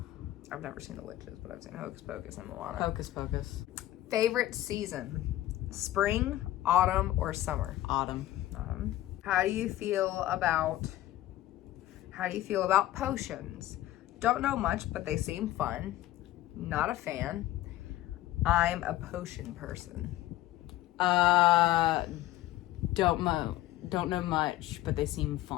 I've never seen The Witches, but I've seen Hocus Pocus and Moana. Hocus Pocus. Favorite season? Spring, autumn, or summer? Autumn. How do you feel about potions? Don't know much, but they seem fun. Not a fan. I'm a potion person. Don't know much, but they seem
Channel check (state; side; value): quieter; right; 14.8 dB